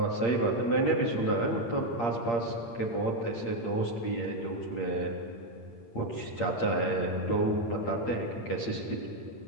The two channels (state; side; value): late; right; 8.6 ms